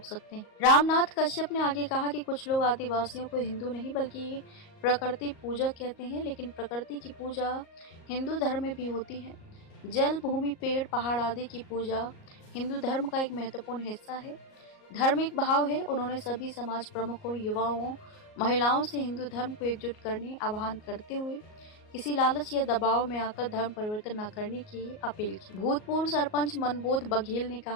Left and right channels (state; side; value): late; right; 38 ms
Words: सकते हैं। रामनाथ कश्यप ने आगे कहा कि कुछ लोग आदिवासियों को हिंदू नहीं बल्कि प्रकृति पूजक कहते हैं, लेकिन प्रकृति की पूजा हिंदू धर्म में भी होती है। जल, भूमि, पेड़, पहाड़ आदि की पूजा हिंदू धर्म का एक महत्वपूर्ण हिस्सा है, धार्मिक भाव है। उन्होंने सभी समाज प्रमुखों, युवाओं, महिलाओं से हिंदू धर्म को एकजुट करने आह्वान करते हुए किसी लालच या दबाव में आकर धर्म परिवर्तन न करने की अपील की। भूतपूर्व सरपंच मनबोध बघेल ने